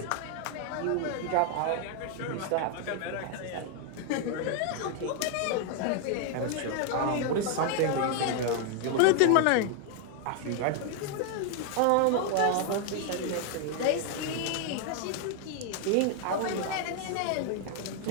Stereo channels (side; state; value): both; different; correlation 0.00